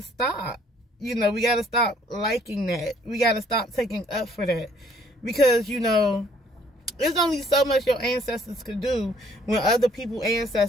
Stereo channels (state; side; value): normal; both; correlation 0.61